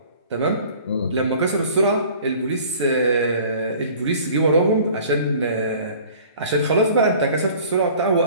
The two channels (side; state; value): both; inverted; correlation -0.49